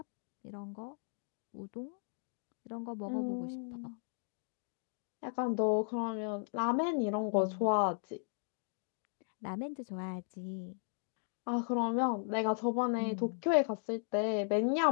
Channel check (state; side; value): silent; right; digital silence